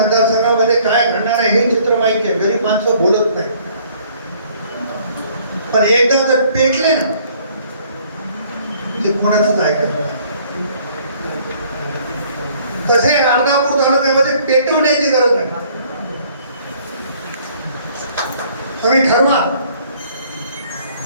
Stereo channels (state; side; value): inverted; both; correlation -0.60